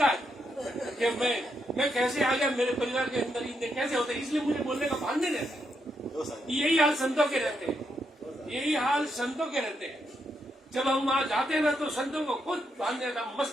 है कि मैं कैसे आ गया मेरे परिवार के अंदर, इतने कैसे होते हैं, इसलिए मुझे बोलने का भान नहीं रहता। यही हाल संतों के रहते हैं, यही हाल संतों के रहते हैं। जब हम वहां जाते हैं ना तो संतों को खुद भान रहता,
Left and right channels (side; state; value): both; normal; correlation 0.80